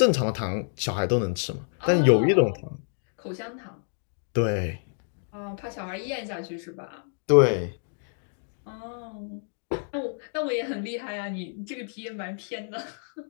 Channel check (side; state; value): right; silent; digital silence